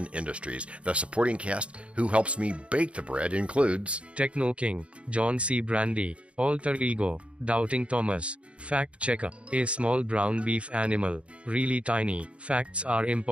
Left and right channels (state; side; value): late; left; 0.060 ms